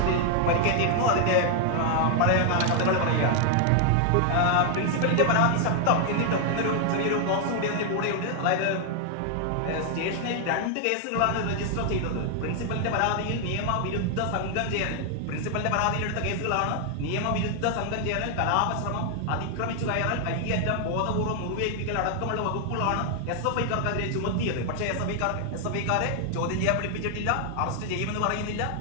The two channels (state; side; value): different; both; correlation 0.00